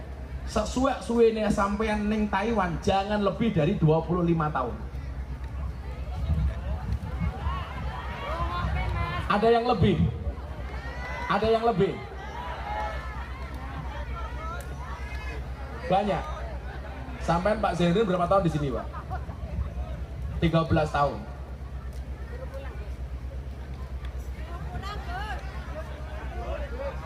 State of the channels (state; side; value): identical; both; correlation 1.00